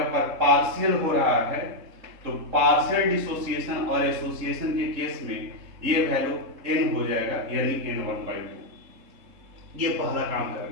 पर पार्शियल हो रहा है तो पार्शियल डिसोसिएशन और एसोसिएशन के केस में ये वैल्यू n हो जाएगा, यानी n1/2। ये पहला काम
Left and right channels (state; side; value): late; left; 3.7 ms